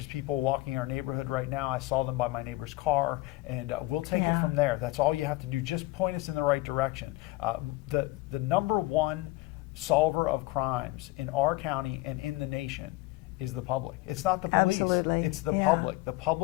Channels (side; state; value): right; quieter; 19.9 dB